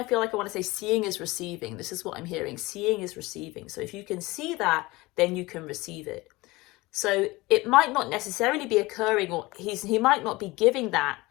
feel like I want to say seeing is receiving. This is what I'm hearing. Seeing is receiving. So if you can see that, then you can receive it. So it might not necessarily be occurring, or he might not be giving that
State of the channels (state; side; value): quieter; right; 21.5 dB